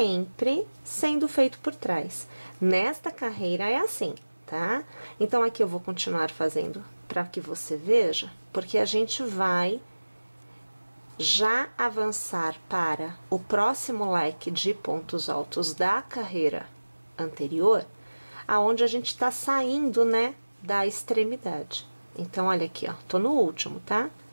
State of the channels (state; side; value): inverted; both; correlation -1.00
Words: sendo feito por trás. Nesta carreira é assim, tá? Então, aqui eu vou continuar fazendo para que você veja, porque a gente vai já avançar para o próximo leque de pontos altos da carreira anterior, aonde a gente está saindo, né, da extremidade. Então, olha aqui, ó, tô no último, tá?